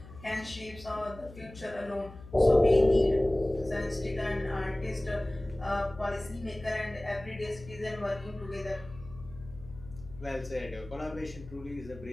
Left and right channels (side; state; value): left; noise; hum, 17 dB below the sound